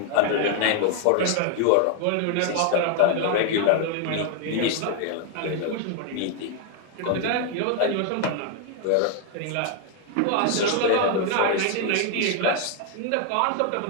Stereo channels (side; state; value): both; different; correlation 0.00